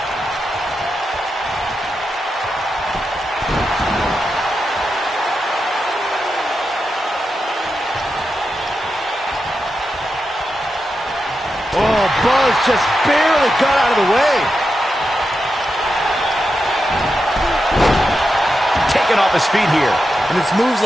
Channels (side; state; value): both; normal; correlation 0.88